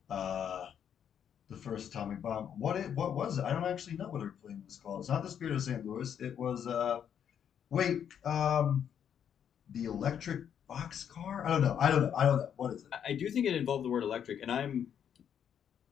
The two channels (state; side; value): quieter; right; 8.7 dB